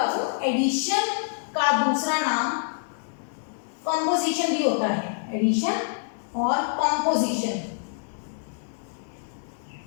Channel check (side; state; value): right; silent; digital silence